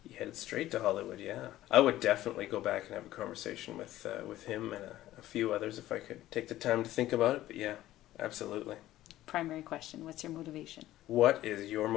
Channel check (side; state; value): right; quieter; 14.7 dB